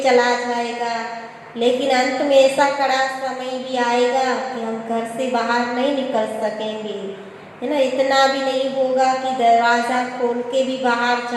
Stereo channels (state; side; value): identical; both; correlation 1.00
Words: चला जाएगा, लेकिन अंत में ऐसा कड़ा समय भी आएगा कि हम घर से बाहर नहीं निकल सकेंगे, है ना, इतना भी नहीं होगा कि दरवाज़ा खोल के भी बाहर